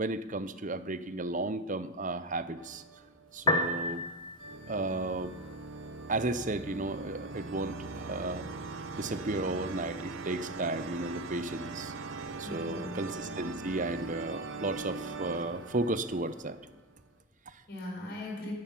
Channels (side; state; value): both; normal; correlation 0.16